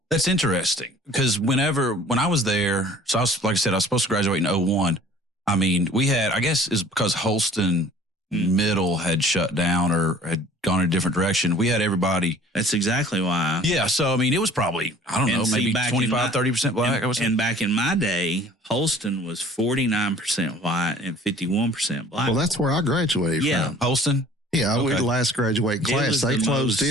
That's interesting, because when I was there, so I was, like I said, I was supposed to graduate in 2001. I mean, we had, I guess it's because Holston Middle had shut down or had gone in a different direction. We had everybody. That's exactly why. Yeah. So, I mean, it was probably, I don't know, maybe 25, 30% black. And back in my day, Holston was 49% white and 51% black. Well, that's where I graduated from. Holston? Yeah, we were the last graduating class. They closed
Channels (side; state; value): both; normal; correlation 0.50